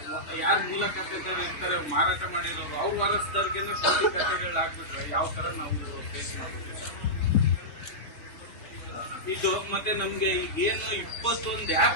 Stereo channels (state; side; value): late; right; 3.5 ms